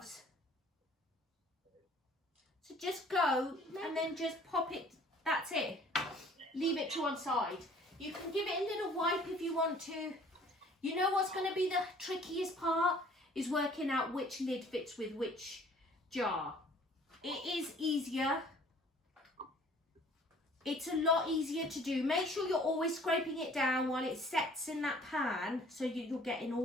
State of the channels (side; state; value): both; normal; correlation 0.53